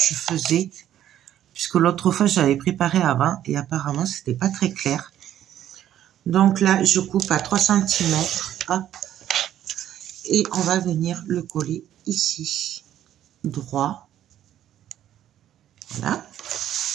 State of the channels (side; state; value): left; quieter; 11.5 dB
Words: Puisque l'autre fois, j'avais préparé avant et apparemment, c'était pas très clair. Donc là, je coupe à 3 cm. Hop. Et on va venir le coller ici, droit. Voilà.